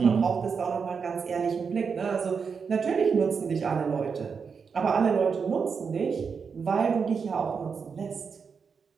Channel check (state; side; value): quieter; left; 5.8 dB